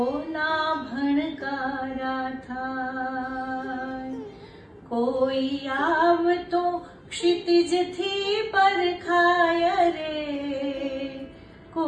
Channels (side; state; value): both; identical; correlation 1.00